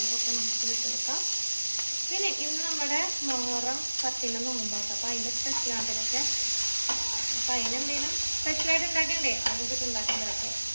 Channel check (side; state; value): both; inverted; correlation -1.00